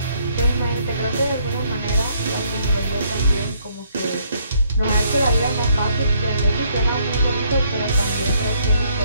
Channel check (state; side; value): inverted; both; correlation -0.67